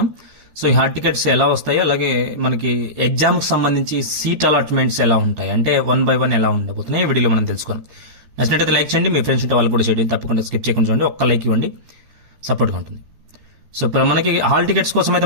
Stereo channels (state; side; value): late; left; 13 ms